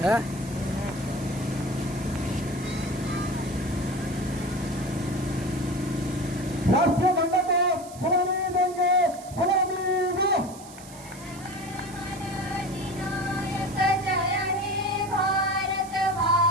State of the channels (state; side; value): noise; right; hiss, 18 dB below the sound